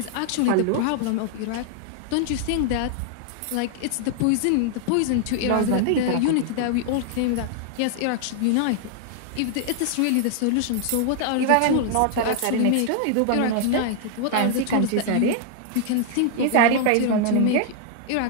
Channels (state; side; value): different; both; correlation -0.01